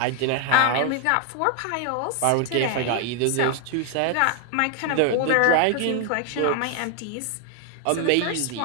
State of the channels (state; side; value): different; both; correlation 0.00